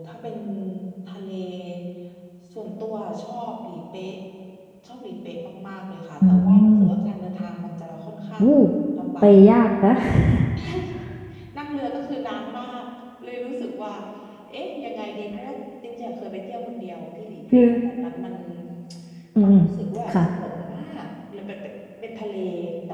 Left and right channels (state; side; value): identical; both; correlation 1.00